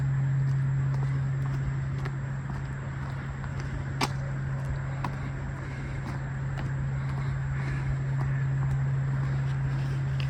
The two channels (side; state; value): both; identical; correlation 1.00